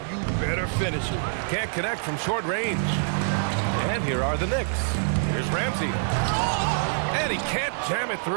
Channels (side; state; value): left; silent; digital silence